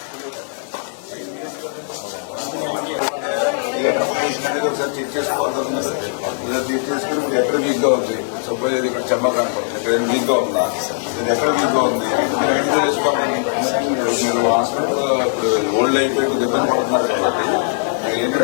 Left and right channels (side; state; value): right; silent; digital silence